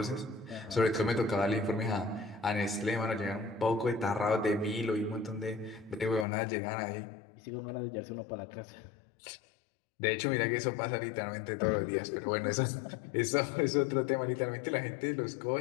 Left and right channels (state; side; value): drops out; right; at 6.2 s